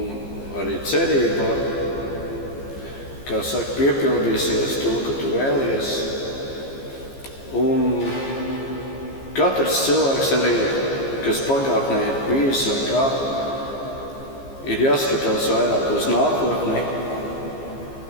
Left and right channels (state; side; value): late; right; 15 ms